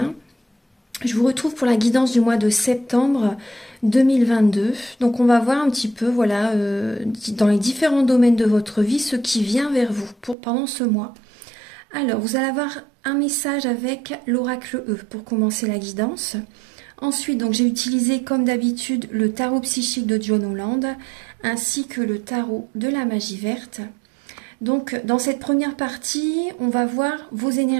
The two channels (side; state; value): left; drops out; at 10.4 s